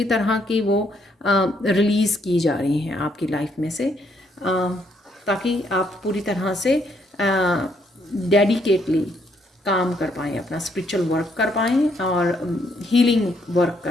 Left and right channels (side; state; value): both; normal; correlation 0.71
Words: तरह की वो रिलीज़ की जा रही हैं आपकी लाइफ में से, ताकि आप पूरी तरह से डेडिकेटली काम कर पाएँ, अपना स्पिरिचुअल वर्क कर पाएँ और हीलिंग वर्क